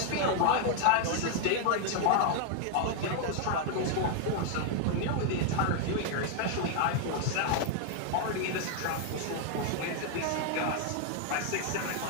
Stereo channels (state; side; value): different; both; correlation 0.00